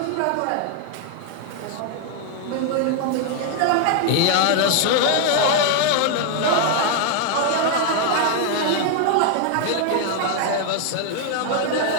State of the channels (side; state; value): both; different; correlation 0.00